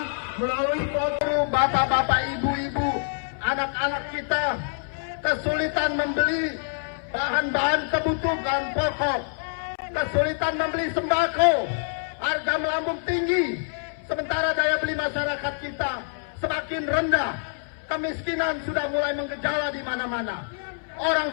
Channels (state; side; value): silent; right; 61 dB below the other